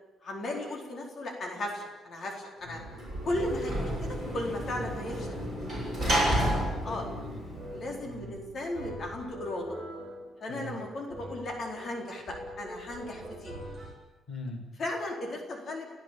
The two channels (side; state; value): both; normal; correlation 0.75